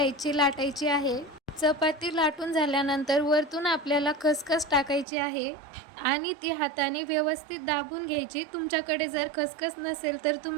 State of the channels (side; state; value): left; drops out; at 5.1 s